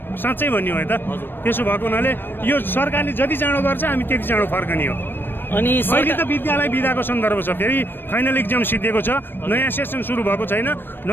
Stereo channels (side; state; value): right; late; 0.097 ms